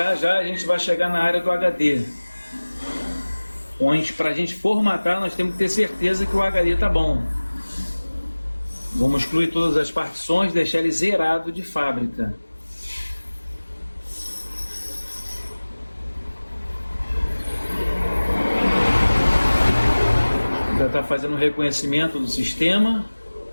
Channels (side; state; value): both; inverted; correlation -1.00